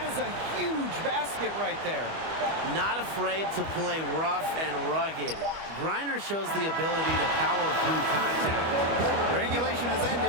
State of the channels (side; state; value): left; late; 25 ms